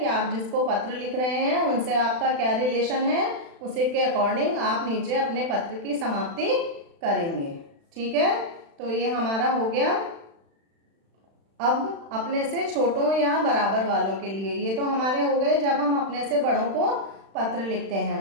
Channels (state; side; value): late; left; 36 ms